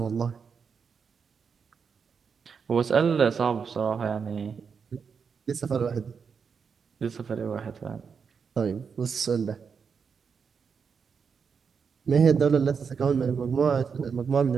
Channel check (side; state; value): left; quieter; 6.1 dB